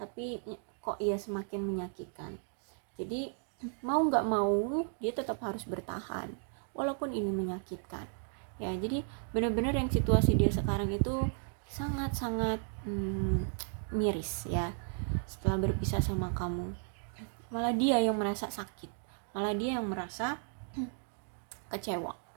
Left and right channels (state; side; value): silent; left; 55 dB below the other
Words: kok ya semakin menyakitkan. Jadi mau nggak mau dia tetap harus bertahan walaupun ini menyakitkan ya. Jadi benar-benar yang situasi dia sekarang itu sangat-sangat miris ya. Setelah berpisah sama kamu, malah dia yang merasa sakit, malah dia yang merasa kecewa